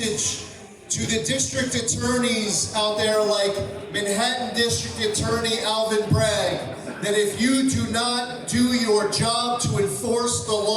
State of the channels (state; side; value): identical; both; correlation 1.00